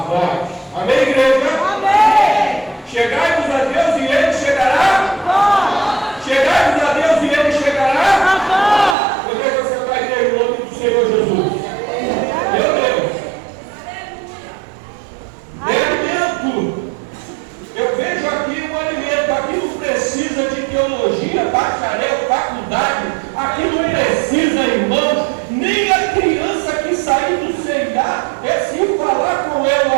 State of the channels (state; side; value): drops out; left; at 9.0 s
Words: vós. Amém, igreja? Amém. Chegai-vos a Deus e ele chegará a vós. Chegai-vos a Deus e ele chegará a vós. Eu vejo você vai em nome do Senhor Jesus. Meu Deus. Alimento. Eu vejo aqui um alimento. Aqui não precisa de teologia, bacharel, faculdade. Aqui não precisa, irmãos, nem a criança que sair do C&A, é se falar com ela,